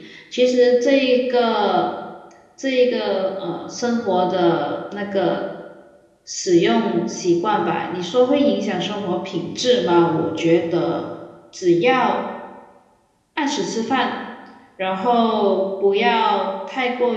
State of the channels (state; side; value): identical; both; correlation 1.00